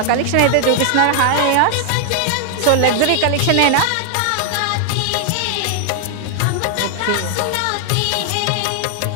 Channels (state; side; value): different; both; correlation 0.00